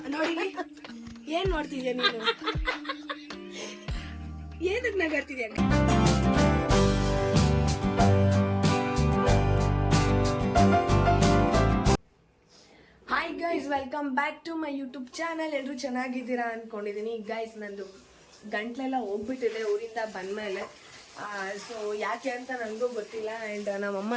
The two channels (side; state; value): both; identical; correlation 1.00